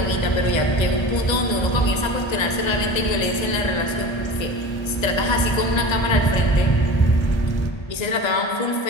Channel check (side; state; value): right; late; 1.3 ms